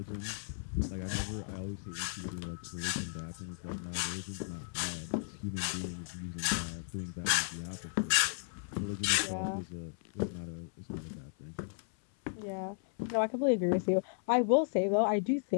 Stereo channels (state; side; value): silent; right; 55 dB below the other